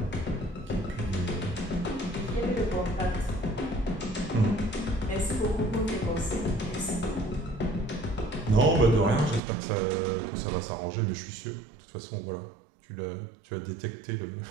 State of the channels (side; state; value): left; drops out; at 9.4 s